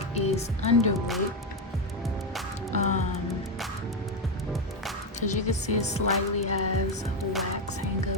is under wig. As you can see, it slightly has wax hang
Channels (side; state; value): both; normal; correlation 0.08